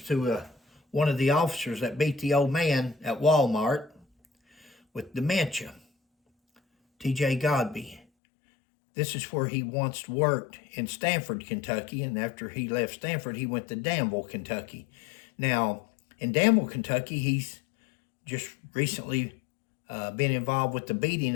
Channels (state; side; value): drops out; right; at 8.0 s